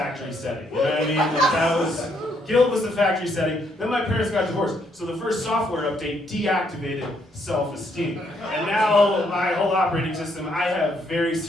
setting. You know what I mean? Like guilt was the factory setting. Then my parents got divorced, so the first software update deactivated self-esteem. And now my whole operating system, I have very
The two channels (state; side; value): normal; both; correlation 0.72